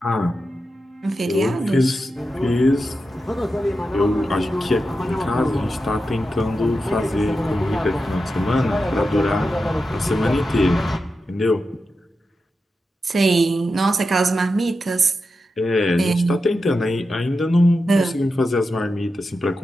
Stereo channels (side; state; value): both; normal; correlation 0.90